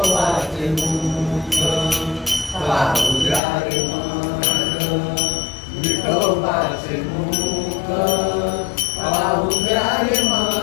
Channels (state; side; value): drops out; right; at 3.4 s